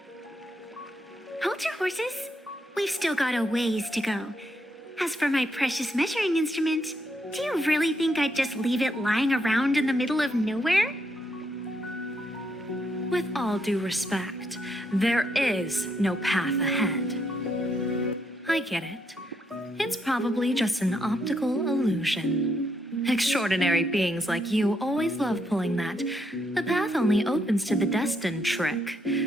Hold your horses. We've still got a ways to go. As for my precious measuring instrument, do you really think I'd just leave it lying around in the middle of nowhere? With all due respect, there is no path ahead. I get it. It's probably just an optical illusion. Extraordinary beings like you always love pulling that "the path only opens to the destined" trick.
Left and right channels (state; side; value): normal; both; correlation 0.77